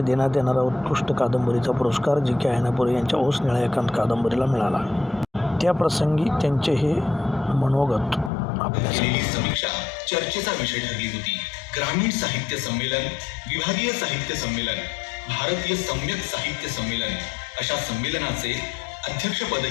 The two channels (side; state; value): right; drops out; at 8.3 s